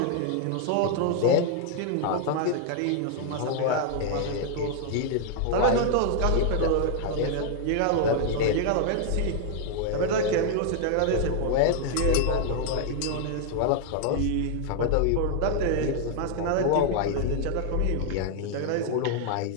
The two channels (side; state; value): both; different; correlation 0.00